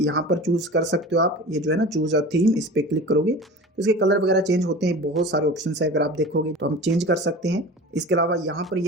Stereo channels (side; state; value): both; normal; correlation 0.36